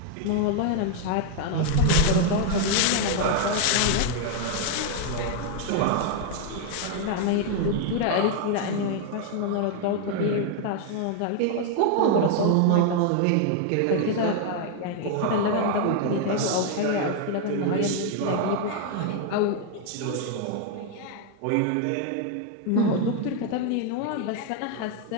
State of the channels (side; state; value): both; different; correlation 0.00